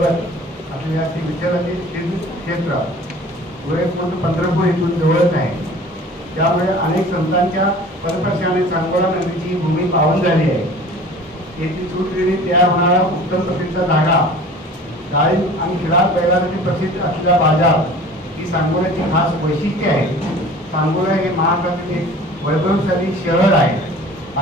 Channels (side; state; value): both; normal; correlation 0.44